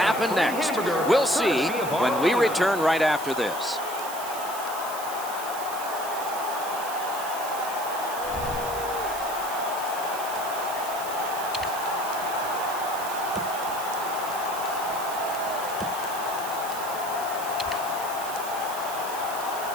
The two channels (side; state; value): right; noise; hiss, 10 dB below the sound